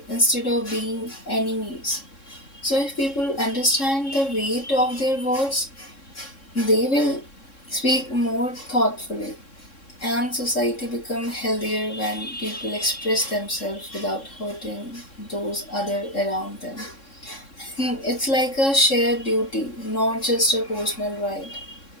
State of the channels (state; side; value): late; right; 3.6 ms